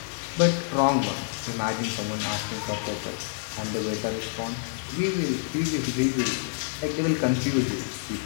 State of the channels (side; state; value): right; silent; digital silence